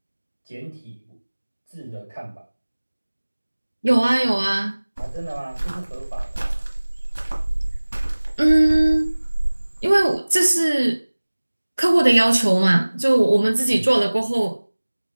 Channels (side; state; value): both; inverted; correlation -1.00